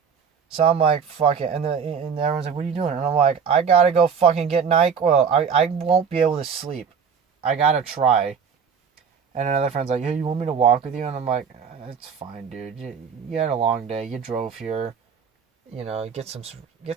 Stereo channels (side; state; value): left; quieter; 6.6 dB